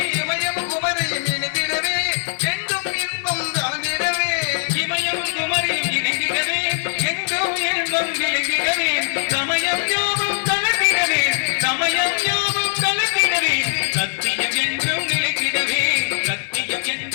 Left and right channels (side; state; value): right; silent; 65 dB below the other